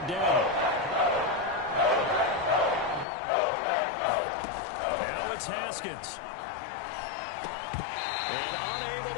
down. Now it's Haskins. And unable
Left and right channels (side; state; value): right; drops out; at 3.1 s